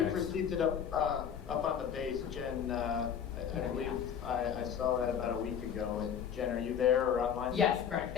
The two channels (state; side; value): quieter; right; 8.2 dB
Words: we've received it up on the base. Jen, I believe I saw that about a week ago. And Jen, are you there or online? Yes, correct.